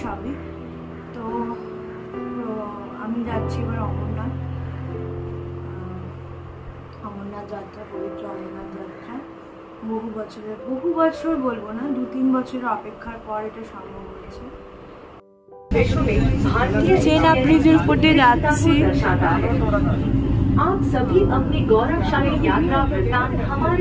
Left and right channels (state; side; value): identical; both; correlation 1.00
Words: সবই। তো আমি যাচ্ছি এবার অমরনাথ যাত্রা, পবিত্র অমরনাথ যাত্রা। বহু বছর বলবো না, 2-3 বছরের অপেক্ষার পর এটা সম্ভব হয়েছে। চেন ব্রিজের উপর দিয়ে যাচ্ছি। आप सभी अपनी गौरवशाली यात्रा वृत्तांत